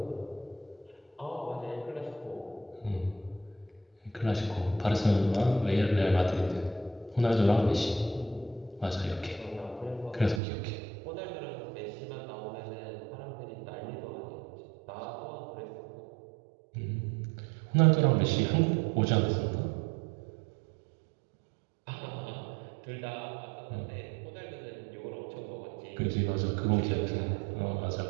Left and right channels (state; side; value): drops out; left; at 10.4 s